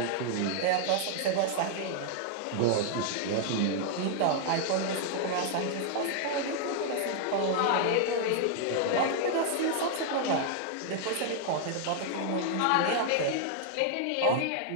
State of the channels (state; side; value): different; both; correlation 0.00